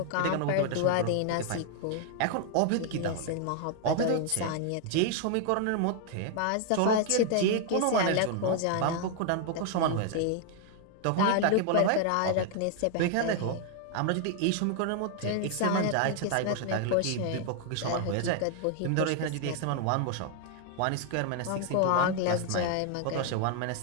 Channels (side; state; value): both; different; correlation 0.00